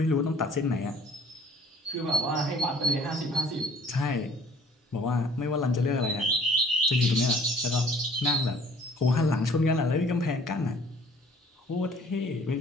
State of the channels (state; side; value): normal; both; correlation 0.54